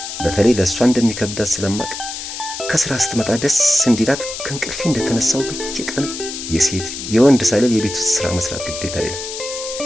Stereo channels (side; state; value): left; noise; hiss, 8 dB below the sound